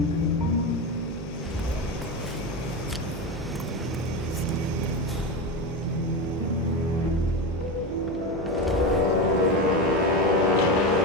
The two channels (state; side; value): noise; right; hum, 10 dB below the sound